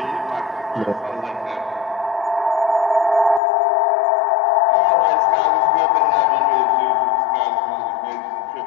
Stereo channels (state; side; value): drops out; right; at 3.4 s